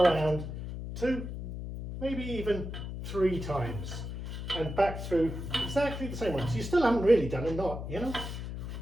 2, maybe even 3 times and back through exactly the same one. So you still haven't really done a knot, you know?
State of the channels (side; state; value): left; noise; hum, 7 dB below the sound